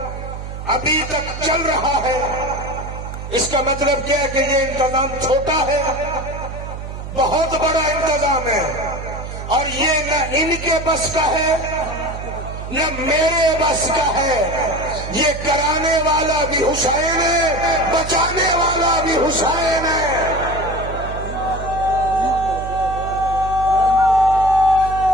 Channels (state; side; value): noise; right; hum, 9 dB below the sound